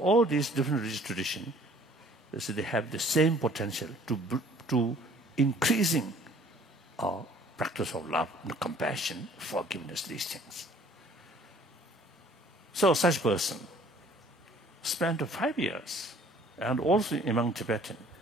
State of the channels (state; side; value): normal; both; correlation 0.55